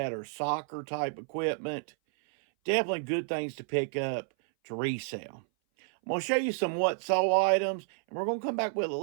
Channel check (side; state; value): left; silent; 57 dB below the other